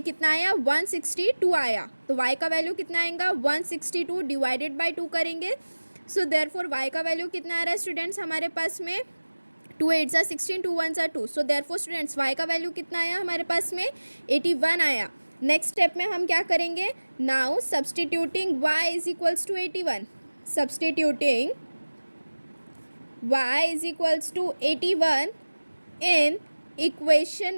आया, 162 आया। तो y का वैल्यू कितना आएगा, 162 डिवाइडेड बाई 2 करेंगे। सो देयरफॉर y का वैल्यू कितना आ रहा है स्टूडेंट्स हमारे पास में, 2 8 ज़ा 16, 2 1 ज़ा 2। सो देयरफॉर स्टूडेंट्स y का वैल्यू कितना आया हमारे पास में, 81 आया। नेक्स्ट स्टेप में हम क्या करेंगे, now substituting y is equals to 81, substituting y is equals to 81 in equation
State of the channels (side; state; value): both; inverted; correlation -1.00